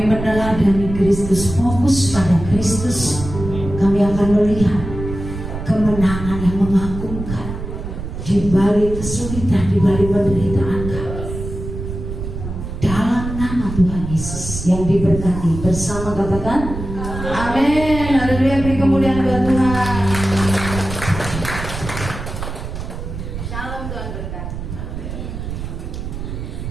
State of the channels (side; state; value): right; noise; rumble, 7 dB below the sound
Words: meneladani Kristus, fokus pada Kristus. Kami akan melihat kemenangan yang mengagumkan di balik kesulitan, di balik penderitaan kami. Dalam nama Tuhan Yesus yang diberkati bersama, katakan amin. Haleluya, beri kemuliaan buat Tuhan.